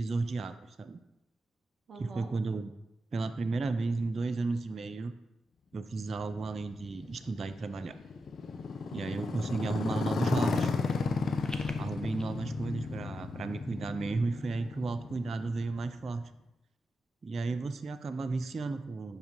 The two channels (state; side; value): normal; both; correlation 0.88